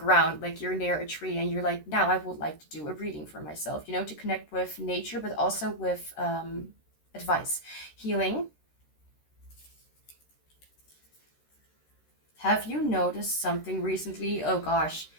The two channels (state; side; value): late; right; 13 ms